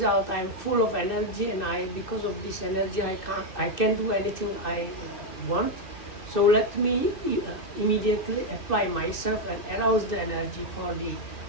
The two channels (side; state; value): right; late; 2.6 ms